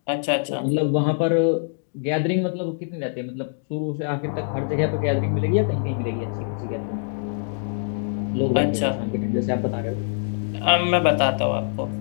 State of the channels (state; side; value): silent; right; digital silence